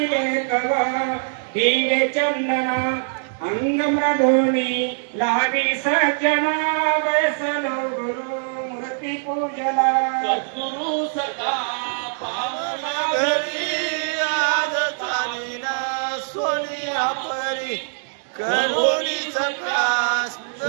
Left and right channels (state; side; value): silent; left; digital silence